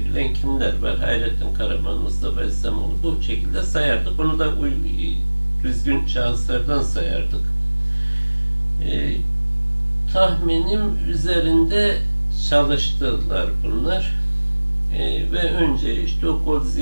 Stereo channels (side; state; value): both; inverted; correlation -1.00